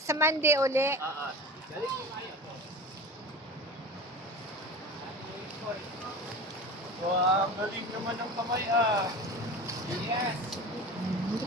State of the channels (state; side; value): normal; both; correlation 0.33